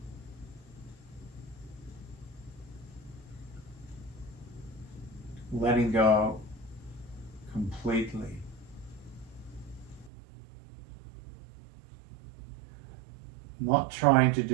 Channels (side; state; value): left; drops out; at 10.1 s